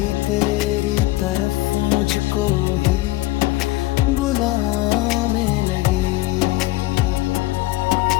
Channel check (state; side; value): quieter; right; 18.7 dB